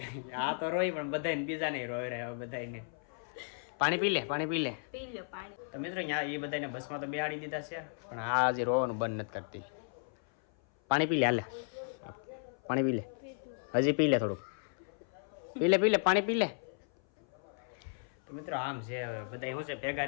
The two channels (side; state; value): right; silent; 55 dB below the other